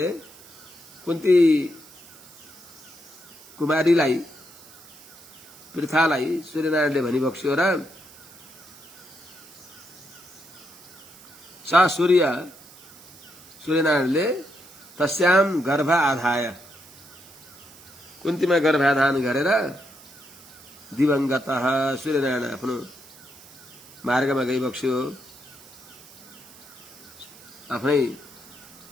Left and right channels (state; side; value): noise; right; hiss, 22 dB below the sound